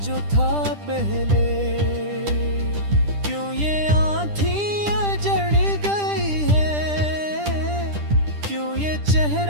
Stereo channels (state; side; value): late; left; 10 ms